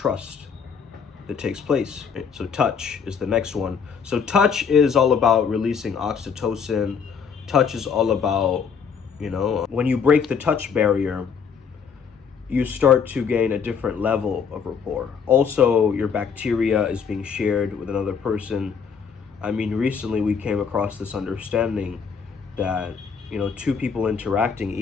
that takes place. So touch is the next one. So touch is all about releasing oxytocin. Touch is all about, you know, when you break the touch barrier, you start to gain a different level of rapport. Also, your bacteria is being shared with another person. I mean, recently we came across this understanding that, you know, two people interacting,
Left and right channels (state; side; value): quieter; right; 6.4 dB